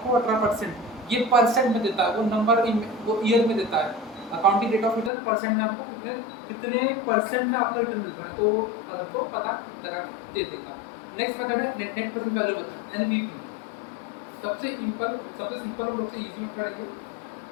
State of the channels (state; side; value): drops out; right; at 5.1 s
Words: 18%। ये परसेंट में देता है, वो नंबर वो ईयर में देता है। Accounting rate of return percent में आपको कितने % में आपका रिटर्न मिल रहा है, तो आपको पता लगा दे देगा। नेक्स्ट मेथड है net present value method, NPV। सबसे सिंपल और सबसे इजी मेथड है ये।